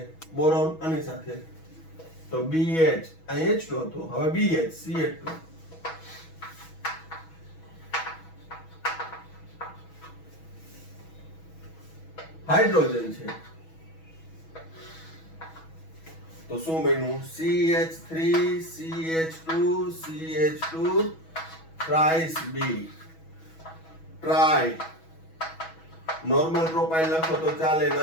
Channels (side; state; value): right; late; 6.2 ms